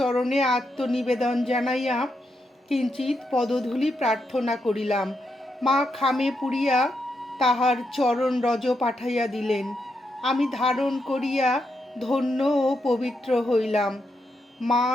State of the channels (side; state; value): both; normal; correlation 0.82